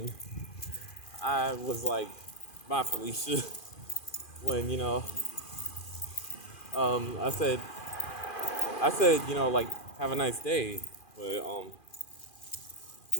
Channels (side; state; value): right; late; 2.4 ms